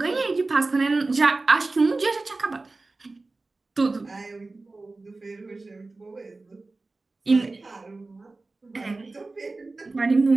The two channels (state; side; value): quieter; left; 3.4 dB